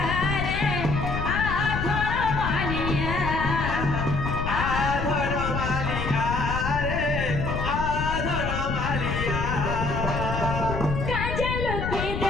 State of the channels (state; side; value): noise; left; rumble, 3 dB below the sound